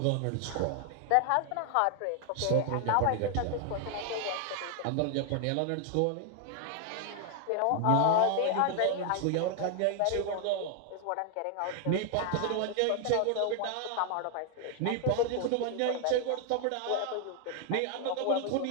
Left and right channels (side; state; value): both; different; correlation 0.00